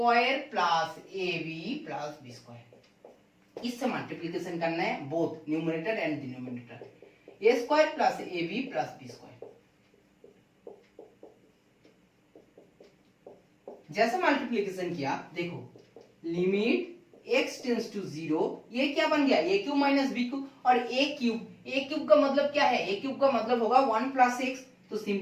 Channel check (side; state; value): both; identical; correlation 1.00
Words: plus a b plus b square, इससे मल्टीप्लीकेशन करना है both numerator and denominator, a square plus a b plus b square. जैसे multiplication किया देखो, limit x tends to 0, ये क्या बन गया, a cube minus b cube, और a क्यूब का मतलब क्या है, a क्यूब का मतलब होगा 1 प्लस एक्स, तो